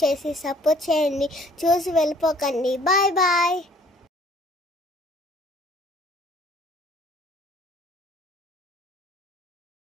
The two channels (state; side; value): normal; both; correlation 0.57